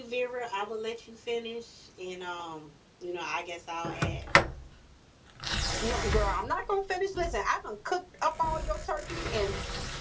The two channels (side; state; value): both; identical; correlation 1.00